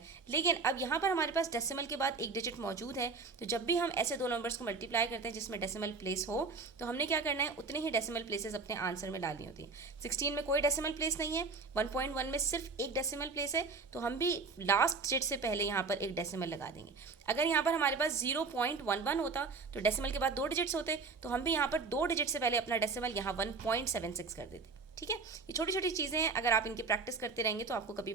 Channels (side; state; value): left; quieter; 4.3 dB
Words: लेकिन अब यहाँ पर हमारे पास डेसिमल के बाद एक डिजिट मौजूद है, तो जब भी हम ऐसे दो नंबर्स को मल्टीप्लाई करते हैं जिसमें डेसिमल प्लेस हो, तो हमने क्या करना है उतने ही डेसिमल प्लेसेस अपने आंसर में डालनी होती है। 16 में कोई डेसिमल प्लेस नहीं है, 1.1 में सिर्फ एक डेसिमल प्लेस है, तो हम भी लास्ट डिजिट से पहले यहाँ पर एक डेसिमल लगा देंगे। अगर यहाँ पर हमारे पास 0.11 होता तो डेसिमल के बाद 2 डिजिट्स होते, तो हम भी यहाँ पर 2 डिजिट से पहले अपना डेसिमल यहाँ 1.76 कर देते। ठीक है, ये छोटी छोटी चीज़ें हैं, अगर आप इनकी प्रैक्टिस करते रहेंगे तो आपको कभी